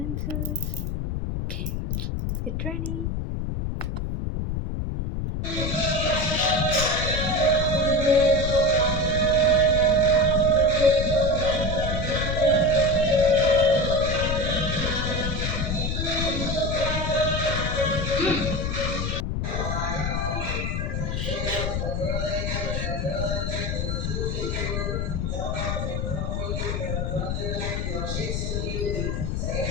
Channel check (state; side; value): noise; left; rumble, 1 dB below the sound